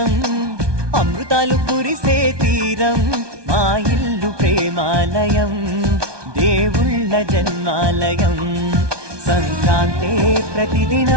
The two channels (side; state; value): left; late; 1.2 ms